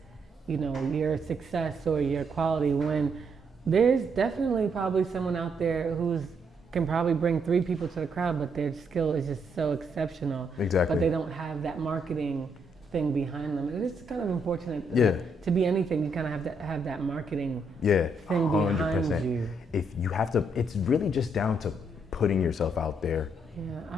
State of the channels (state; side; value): normal; both; correlation 0.75